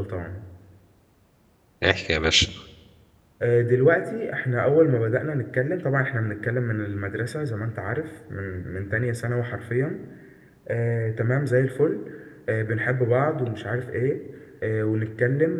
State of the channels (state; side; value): identical; both; correlation 1.00